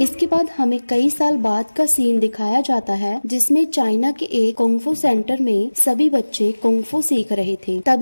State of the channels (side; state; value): both; inverted; correlation -1.00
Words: इसके बाद हमें कई साल बाद का सीन दिखाया जाता है जिसमें चाइना के एक कुंग-फू सेंटर में सभी बच्चे कुंग-फू सीख रहे थे।